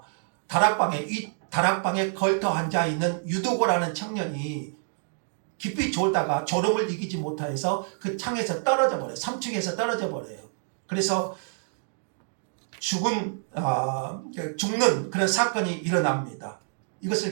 다락방에 걸터 앉아 있는 유두고라는 청년이 깊이 졸다가 졸음을 이기지 못해서 그 창에서 떨어져 버려요. 3층에서 떨어져 버려요. 그래서 죽는 그런 사건이 일어납니다.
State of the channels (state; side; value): silent; left; digital silence